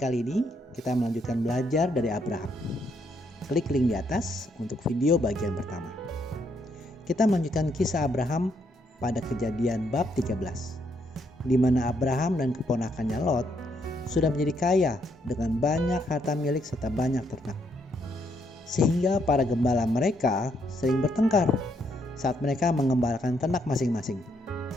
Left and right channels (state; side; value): normal; both; correlation 0.74